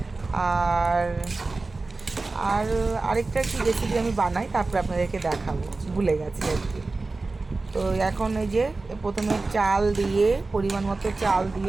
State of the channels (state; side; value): quieter; left; 3.5 dB